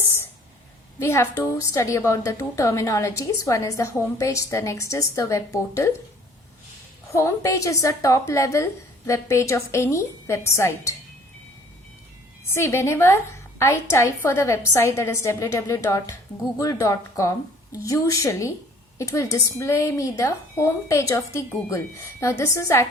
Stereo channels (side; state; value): both; normal; correlation 0.54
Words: we have to study about the two terminologies. One is the home page, the next is the web portal. Home page is the top level web page of any website. See, whenever I type for the website, that is www.google.com, usually it will display me the home page of the Google. Now this is